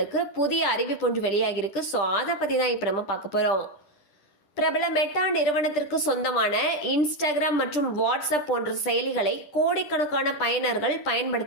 புதிய அறிவிப்பு ஒன்று வெளியாகிருக்கு. ஸோ அதை பத்தி தான் இப்போ நம்ம பார்க்க போறோம். பிரபல மெட்டா நிறுவனத்திற்கு சொந்தமான இன்ஸ்டாகிராம் மற்றும் வாட்ஸ்அப் போன்ற செயலிகளை கோடிக்கணக்கான பயனர்கள்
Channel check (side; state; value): right; late; 10 ms